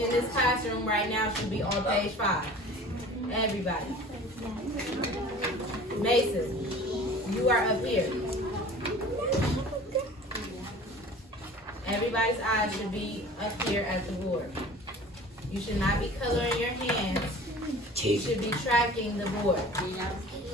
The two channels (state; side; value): normal; both; correlation 0.43